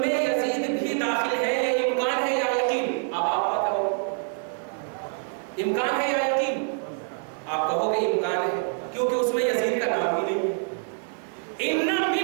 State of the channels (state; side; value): silent; left; 61 dB below the other